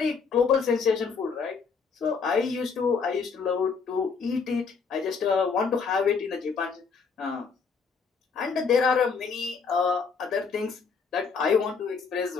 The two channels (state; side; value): quieter; right; 5.4 dB